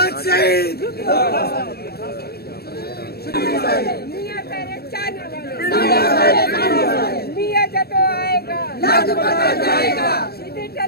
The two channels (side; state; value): right; late; 0.46 ms